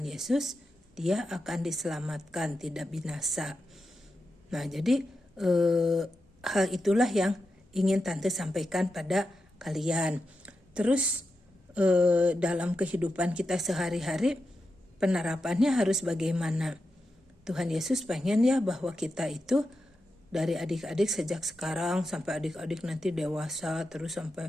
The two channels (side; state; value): both; normal; correlation 0.89